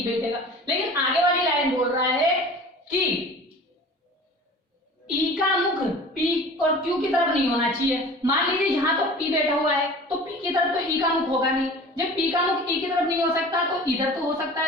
बैठेगा। लेकिन आगे वाली लाइन बोल रहा है कि ई का मुख पी और क्यू की तरफ नहीं होना चाहिए। मान लीजिए यहाँ तो पी बैठा हुआ है तो पी की तरफ तो ई का मुख होगा नहीं। जब पी का मुख ई की तरफ नहीं हो सकता तो इधर तो हो सकता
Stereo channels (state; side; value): normal; both; correlation 0.41